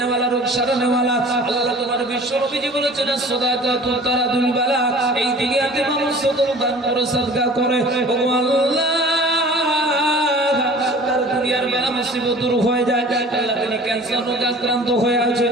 রোগ সারানেওয়ালা। আল্লাহ তোমার বিশ্ব নবীজি বলেছেন সাদাকাতু তারাদুল বালা। এই দুনিয়াতে মানুষ সদর দান করে সাদকা করে ও আল্লাহ তার দুনিয়ার বেলা মুসিবত দূর হয়ে যায়। আল্লাহ তিনি ক্যান্সার রোগে আক্রান্ত হয়ে আছে,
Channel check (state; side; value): normal; both; correlation 0.45